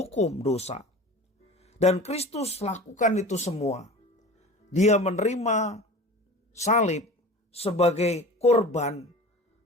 dosa. Dan Kristus lakukan itu semua. Dia menerima salib sebagai korban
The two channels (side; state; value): both; normal; correlation 0.37